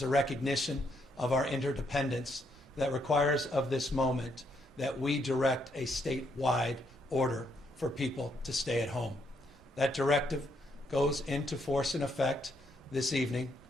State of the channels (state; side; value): normal; both; correlation 0.74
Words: a recognition of our interdependence that requires of this moment that we direct a statewide order for people to stay at home. That directive goes into force and effect this evening,